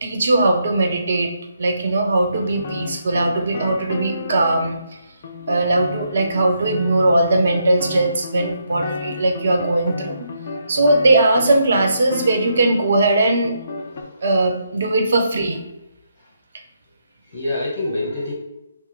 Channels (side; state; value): both; inverted; correlation -0.78